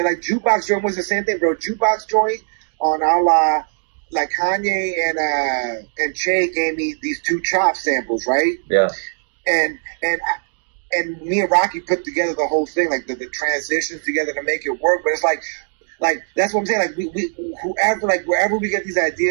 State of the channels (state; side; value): silent; left; digital silence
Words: Like Jukebox Joint was the same thing, bro. Jukebox Joint on awge, like Kanye and Che gave me these 2 Chop samples, right? Yeah. And me and Rocky put together the whole thing, like the transitions together to make it work. But it's like that's what I'm saying. Like we whoever, like wherever we get these